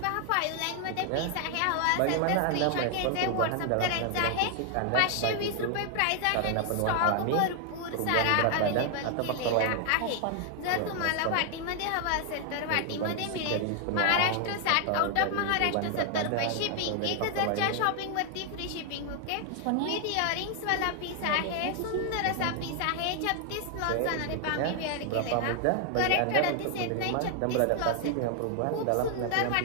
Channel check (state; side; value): different; both; correlation 0.00